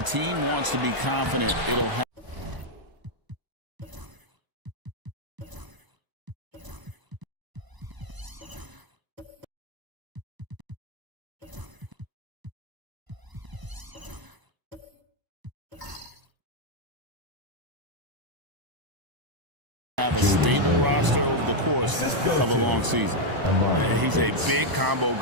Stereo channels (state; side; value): late; left; 1.0 ms